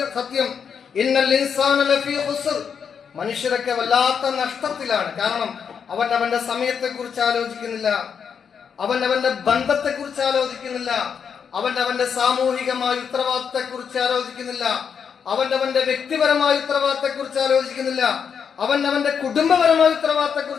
സത്യം. ഇന്നൽ ഇൻസാന ലഫീ ഖുസ്ർ, മനുഷ്യരൊക്കെ വല്ലാത്ത നഷ്ടത്തിലാണ്. കാരണം അവൻ അവന്റെ സമയത്തെ കുറിച്ച് ആലോചിക്കുന്നില്ല, അവൻ അവന്റെ ബന്ധത്തെ കുറിച്ച് ആലോചിക്കുന്നില്ല, അവൻ അവന്റെ സാമൂഹികമായ ഉത്തരവാദിത്തത്തെ കുറിച്ച് ആലോചിക്കുന്നില്ല, അവൻ അവന്റെ വ്യക്തിപരമായ ഉത്തരവാദിത്തത്തെ കുറിച്ച് ആലോചിക്കുന്നില്ല, അവൻ അവന്റെ കുടുംബപരമായ ഉത്തരവാദിത്തത്തെ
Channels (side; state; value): right; quieter; 6.9 dB